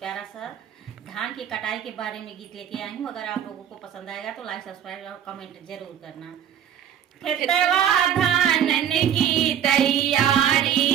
सा धान की कटाई के बारे में गीत लेके आई हूँ। अगर आप लोगों को पसंद आएगा तो लाइक, सब्सक्राइब और कमेंट जरूर करना। खेतवा धान की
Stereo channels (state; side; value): quieter; left; 9.5 dB